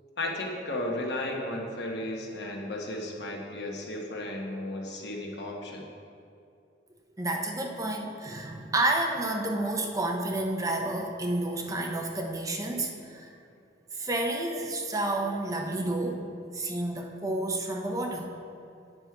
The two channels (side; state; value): both; normal; correlation 0.33